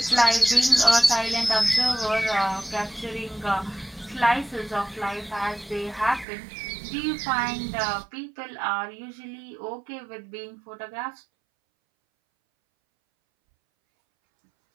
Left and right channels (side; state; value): left; drops out; at 6.2 s